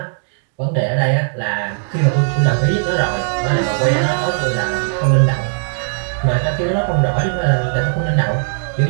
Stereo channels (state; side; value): silent; left; 66 dB below the other